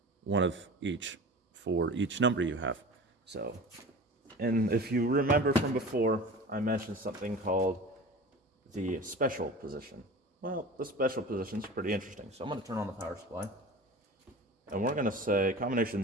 one of each for each number you have. So, and if you remember from before, I mentioned something called the special position. Well, the special position is pretty interesting. So I'm going to turn on the power supply. And we're going to say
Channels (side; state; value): both; normal; correlation 0.36